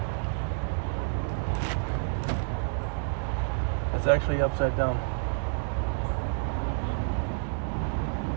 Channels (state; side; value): silent; left; digital silence